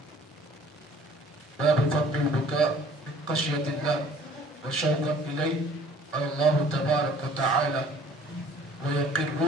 باب فضل البكاء من خشیۃ اللہ وشوقا الیہ قال اللہ تبارک وتعالی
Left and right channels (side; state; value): both; normal; correlation 0.53